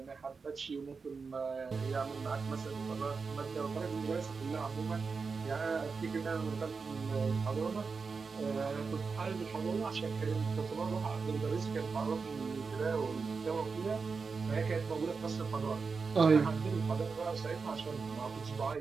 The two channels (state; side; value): quieter; left; 4.9 dB